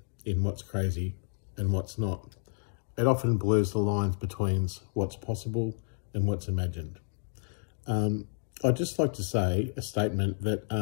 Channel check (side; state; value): right; silent; digital silence